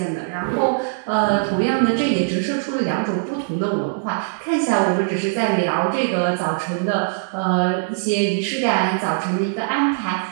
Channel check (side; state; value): left; silent; digital silence